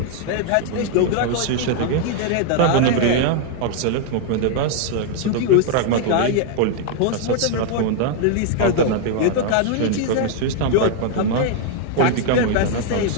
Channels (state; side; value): different; both; correlation 0.00